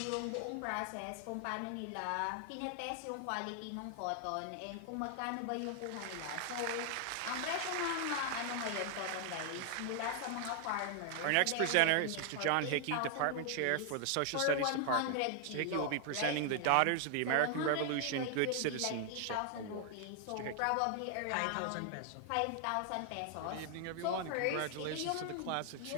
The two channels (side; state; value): both; different; correlation 0.00